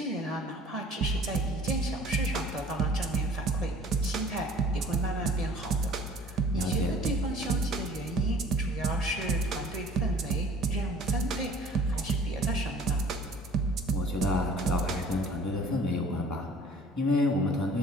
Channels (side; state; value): both; normal; correlation 0.50